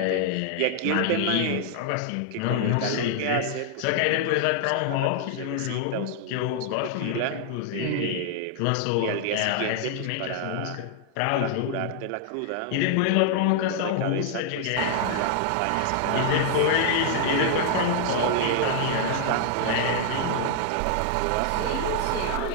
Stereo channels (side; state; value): both; different; correlation 0.00